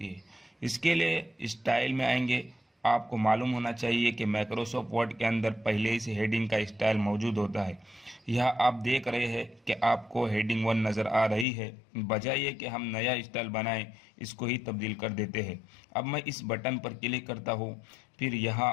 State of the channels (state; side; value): drops out; right; at 11.5 s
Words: है। इसके लिए स्टाइल में आएंगे। आपको मालूम होना चाहिए कि माइक्रोसॉफ्ट वर्ड के अंदर पहले ही से हेडिंग का स्टाइल मौजूद होता है। यह आप देख रहे हैं कि आपको हेडिंग 1 नज़र आ रही है। बजाय ये कि हम नया स्टाइल बनाएं, इसको ही तब्दील कर देते हैं। अब मैं इस बटन पर क्लिक करता हूँ, फिर